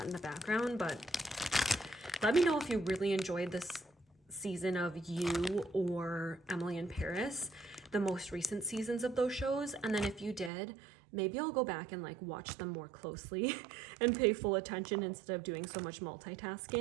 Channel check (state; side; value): drops out; left; at 10.5 s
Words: in the background. But let me know if you really enjoyed this season of You or Emily in Paris, the most recent seasons of those shows. And then if you did, maybe I'll go back and like watch them more closely and pay full attention instead of doing so much